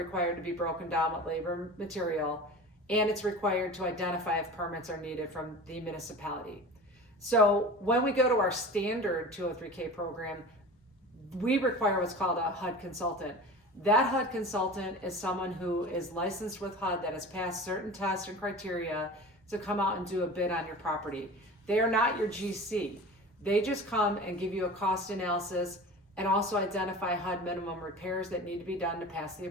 to be broken down with labor material, and it's required to identify if permits are needed from the municipality. So when we go to our standard 203K program, we require what's called a Hud Consultant. That Hud Consultant is someone who is licensed with HUD that has passed certain tests and criteria to come out and do a bid on your property. They are not your GC. They just come and give you a cost analysis and also identify HUD minimum repairs that need to be done to pass the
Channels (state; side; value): normal; both; correlation 0.35